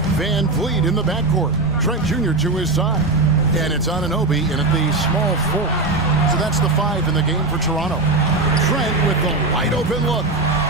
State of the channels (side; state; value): left; quieter; 3.2 dB